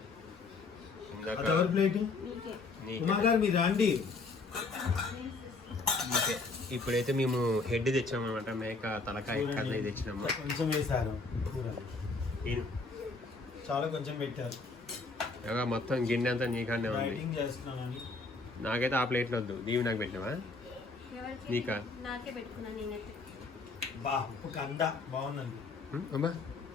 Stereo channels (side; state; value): right; quieter; 3.8 dB